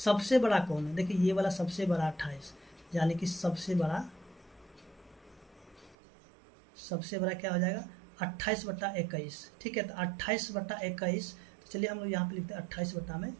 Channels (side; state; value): left; drops out; at 6.0 s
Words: बड़ा कौन है, देखिए ये वाला सबसे बड़ा 28, यानी कि सबसे बड़ा क्या हो जाएगा 28/21, ठीक है। तो 28/21, तो चलिए हम लोग यहाँ पे लिखते हैं